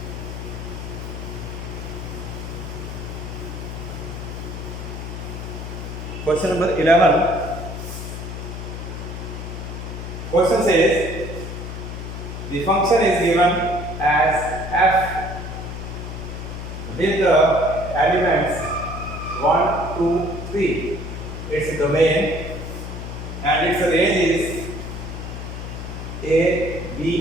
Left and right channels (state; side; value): noise; left; hum, 7 dB below the sound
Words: Question number 11. Question says the function is given as f with the elements 1, 2, 3. Its domain and its range is a,